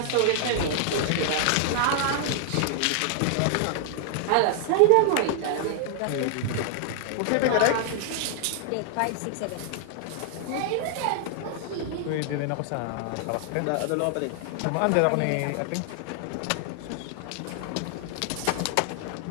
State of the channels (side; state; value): both; different; correlation 0.00